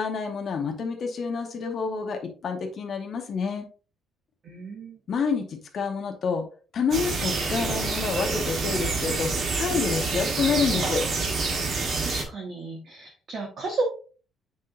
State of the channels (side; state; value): both; normal; correlation 0.70